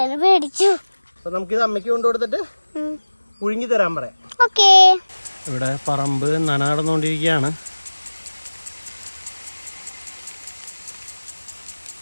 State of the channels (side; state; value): both; inverted; correlation -1.00